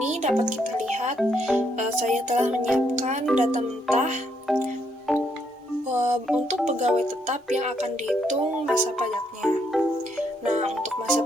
dapat kita lihat saya telah menyiapkan data mentah untuk pegawai tetap yang akan dihitung masa pajaknya. Nah, untuk masa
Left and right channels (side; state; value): both; normal; correlation 0.74